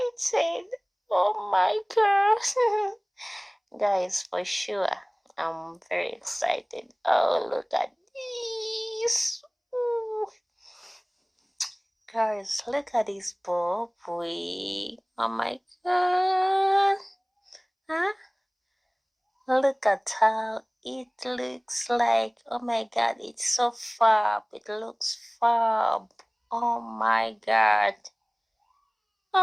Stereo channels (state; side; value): identical; both; correlation 1.00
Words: Oh my god. Guys, for sure, I'm very excited. Oh, look at this. Ooh. Guys, look at this bob wig. Oh my god. Huh? Look at how it looks like. Oh my god, it's so fab. It looks fab. Oh my god.